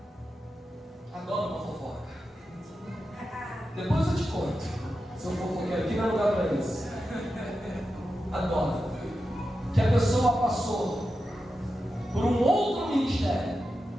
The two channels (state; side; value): normal; both; correlation 0.90